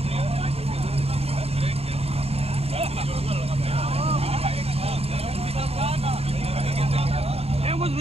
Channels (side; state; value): left; late; 0.29 ms